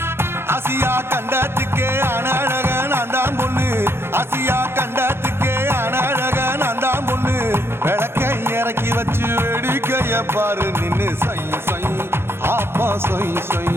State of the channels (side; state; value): left; late; 0.12 ms